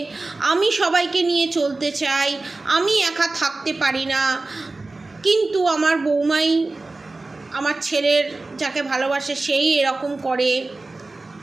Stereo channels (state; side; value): quieter; left; 3.3 dB